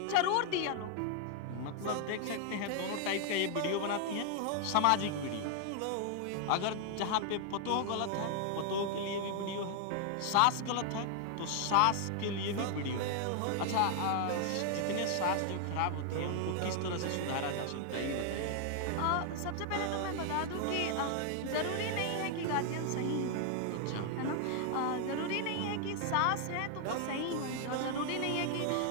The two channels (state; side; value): different; both; correlation 0.00